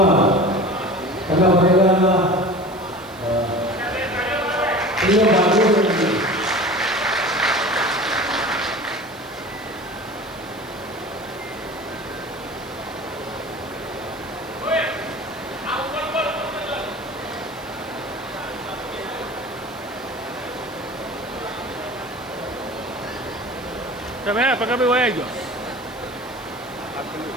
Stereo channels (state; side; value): noise; right; hiss, 23 dB below the sound